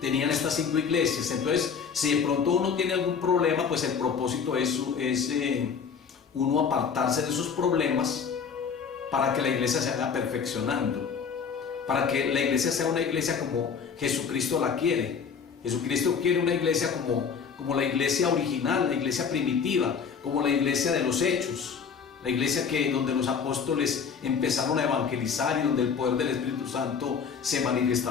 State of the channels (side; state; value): right; quieter; 6.4 dB